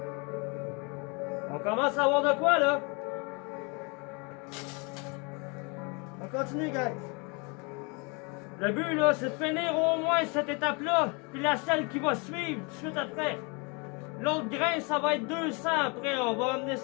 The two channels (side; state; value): right; quieter; 31.4 dB